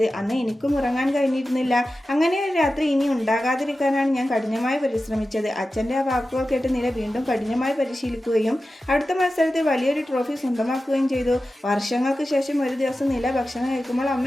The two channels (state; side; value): normal; both; correlation 0.94